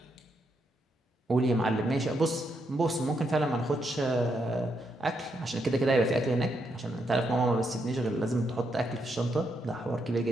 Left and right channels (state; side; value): normal; both; correlation 0.79